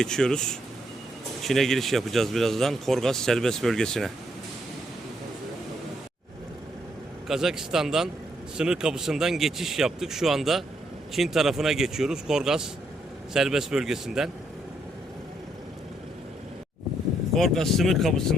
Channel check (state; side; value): normal; both; correlation 0.74